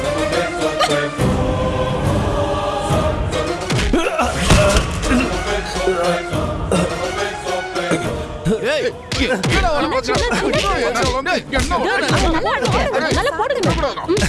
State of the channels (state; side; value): identical; both; correlation 1.00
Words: ஏய் என்னடா வர பாக்குற? நல்லா போடுங்க.